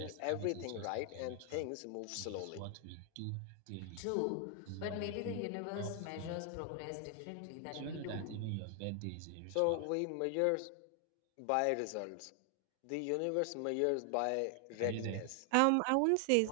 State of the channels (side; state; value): both; different; correlation 0.00